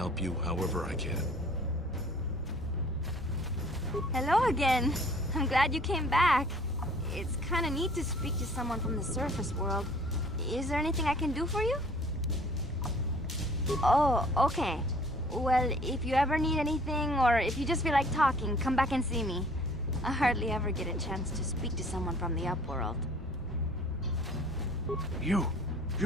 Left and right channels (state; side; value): normal; both; correlation 0.53